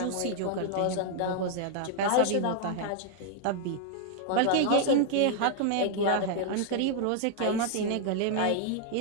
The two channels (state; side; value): different; both; correlation 0.00